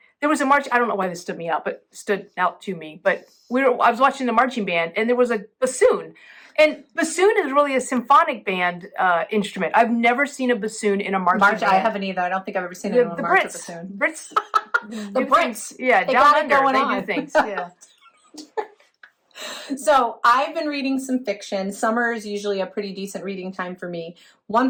was a march. I don't know why this stood out to me, but I was watching the marching band, and there was a bassoon. And bassoon is really a symphonic band instrument. I've never seen a bassoon in a marching band. I haven't either. I don't think I've ever seen anyone march a bassoon. Brits. The Brits. Yeah, they down got under, it going they on. do things. Yeah. So I've been reading some fiction. Summer is usually a pretty decent reading time for me. One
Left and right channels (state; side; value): identical; both; correlation 1.00